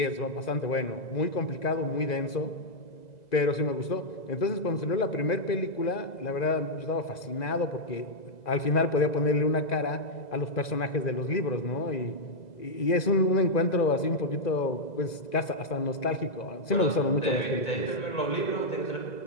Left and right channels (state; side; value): late; right; 2.0 ms